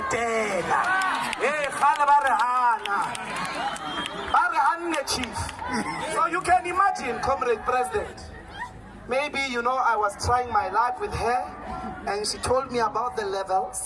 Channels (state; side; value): identical; both; correlation 1.00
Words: Hey, khala barahana. Barahane chief. So you can imagine, Comrade President. Maybe, I was trying my luck with her and she told me about the